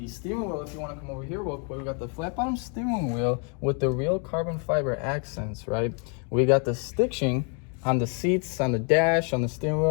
steering wheel, if you want to come over here real quick. We got the flat bottom steering wheel with the real carbon fiber accents, right? We got the stitching on the seats, on the dash, on the steering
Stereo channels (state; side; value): quieter; right; 38.8 dB